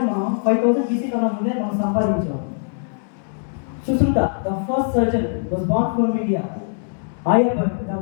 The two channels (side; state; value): right; silent; digital silence